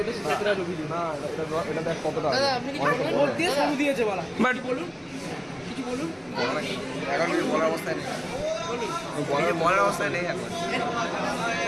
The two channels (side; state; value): both; identical; correlation 1.00